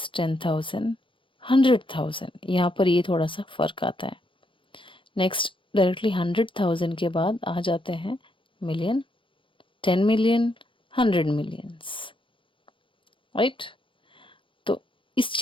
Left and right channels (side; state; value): right; late; 0.25 ms